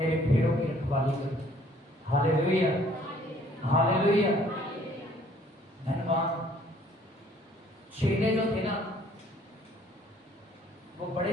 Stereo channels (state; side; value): normal; both; correlation 0.59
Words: भेड़ों की रखवाली कर। Hallelujah, hallelujah. धन्यवाद। चेले जो थे ना वो